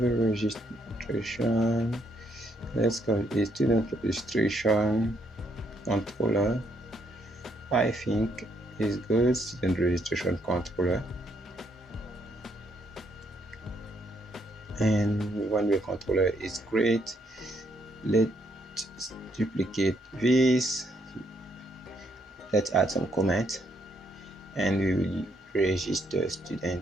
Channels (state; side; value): normal; both; correlation 0.73